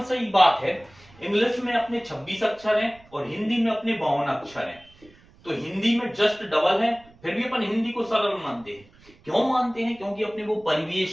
सी बात है, इंग्लिश में अपने 26 अक्षर हैं और हिंदी में अपने 52 अक्षर हैं। तो हिंदी में जस्ट डबल है, फिर भी अपन हिंदी को सरल मानते हैं। क्यों मानते हैं? क्योंकि अपने वो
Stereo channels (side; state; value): right; noise; rumble, 26 dB below the sound